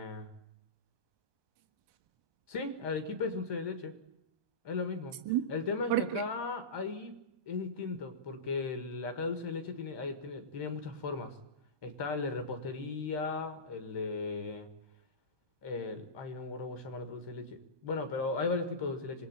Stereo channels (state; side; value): late; left; 1.2 ms